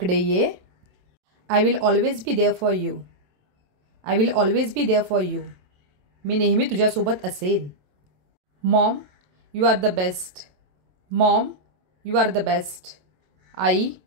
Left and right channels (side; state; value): left; late; 27 ms